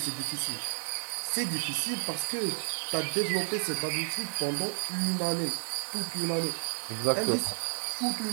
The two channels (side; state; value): left; silent; 57 dB below the other